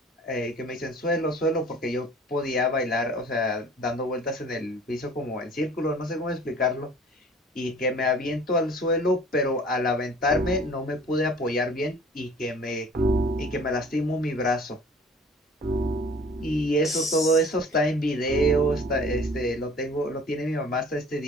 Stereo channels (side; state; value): both; normal; correlation 0.48